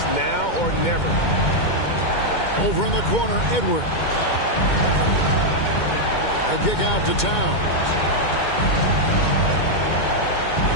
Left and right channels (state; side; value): late; right; 2.2 ms